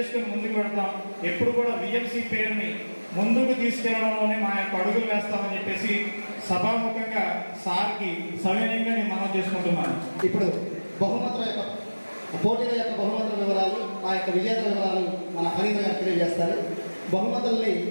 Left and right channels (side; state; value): both; inverted; correlation -1.00